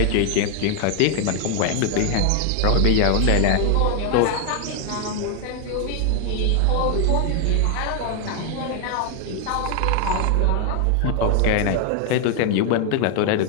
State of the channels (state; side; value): different; both; correlation 0.00